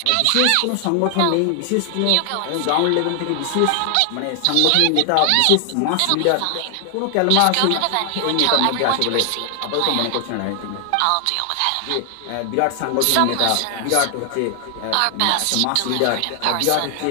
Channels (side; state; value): both; different; correlation 0.00